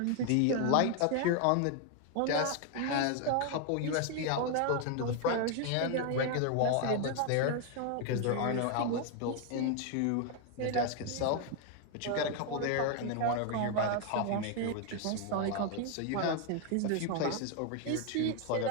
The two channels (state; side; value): different; both; correlation 0.01